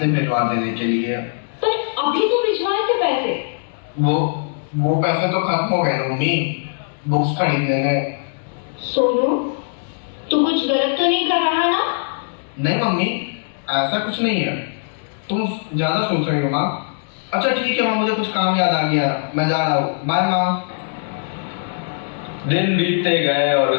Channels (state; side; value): silent; right; digital silence